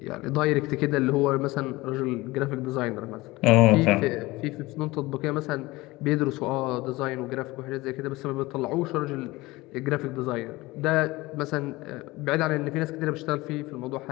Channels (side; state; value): right; quieter; 20.5 dB